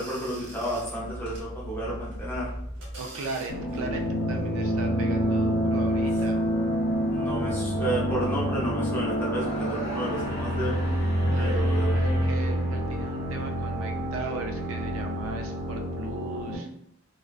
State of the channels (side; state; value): both; normal; correlation 0.61